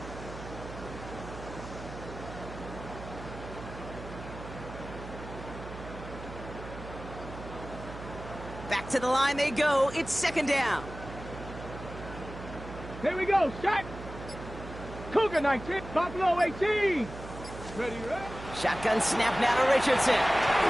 Back to the line they go. It's second down. Here we go. Shot. Cougar 19. Buffalo 18. Ready, ready. Shotgun snap now to Richardson.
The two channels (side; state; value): right; noise; hum, 12 dB below the sound